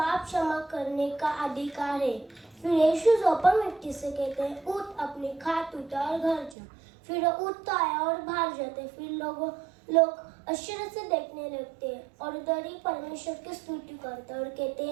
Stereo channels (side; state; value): left; drops out; at 6.6 s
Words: क्षमा करने का अधिकार है। फिर यीशु अपंग व्यक्ति से कहते हैं, उठ अपनी खाट उतार घर जा। फिर वो उठता है और बाहर जाते। फिर लोग आश्चर्य से देखने लगते हैं और उधर ही परमेश्वर की स्तुति करते हैं और कहते